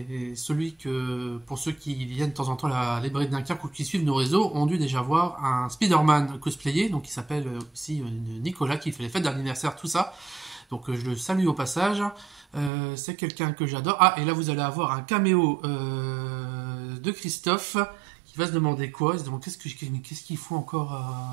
pour ceux qui viennent de temps en temps à la librairie de Dunkerque ou qui suivent nos réseaux, ont dû déjà voir un Spider-Man cosplayé, donc il s'appelle aussi Nicolas, qui fait les fêtes d'anniversaire, tout ça. Donc je le salue au passage. C'est quelqu'un que j'adore. Ah, et là vous allez avoir un caméo de Christophe, qui va se demander quoi? Il se demande qu'est-ce qu'il faut encore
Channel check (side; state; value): left; drops out; at 12.7 s